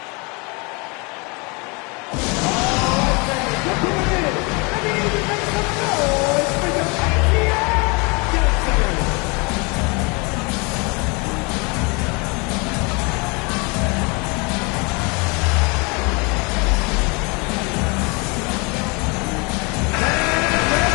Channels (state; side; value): quieter; right; 29.7 dB